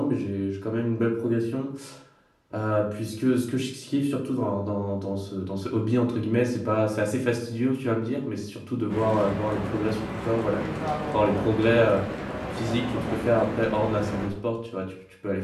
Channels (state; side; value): identical; both; correlation 1.00